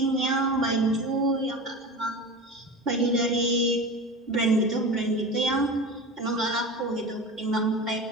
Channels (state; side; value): normal; both; correlation 0.30